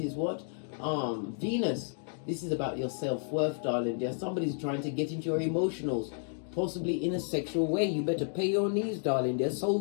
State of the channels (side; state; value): right; silent; digital silence